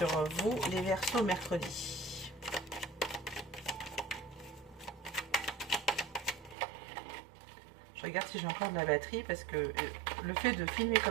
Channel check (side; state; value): left; drops out; at 6.6 s